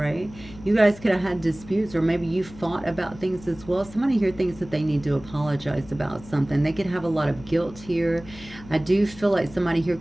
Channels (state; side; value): noise; left; hum, 18 dB below the sound